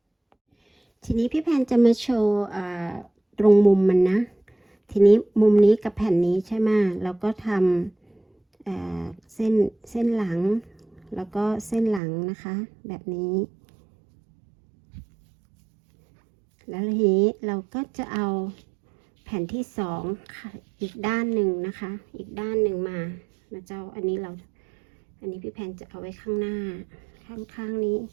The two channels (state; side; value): drops out; left; at 12.0 s